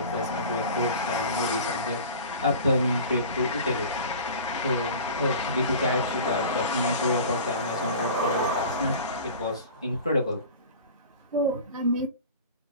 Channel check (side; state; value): both; inverted; correlation -0.38